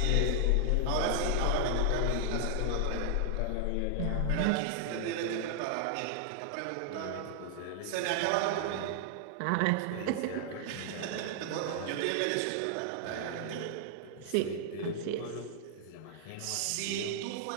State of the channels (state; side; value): different; both; correlation -0.01